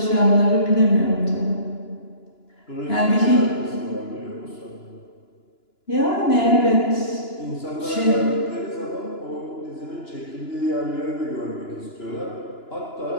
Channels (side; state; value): right; late; 2.9 ms